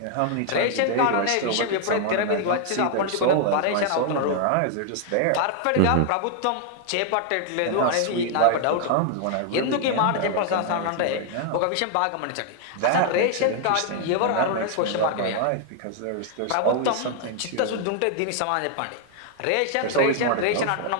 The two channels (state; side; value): different; both; correlation 0.00